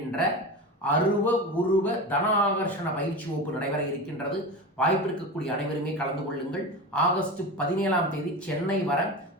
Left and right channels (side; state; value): both; normal; correlation 0.26